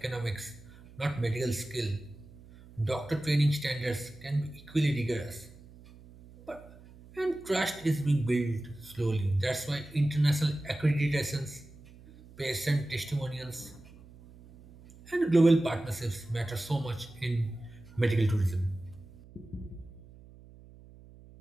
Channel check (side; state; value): right; noise; hum, 21 dB below the sound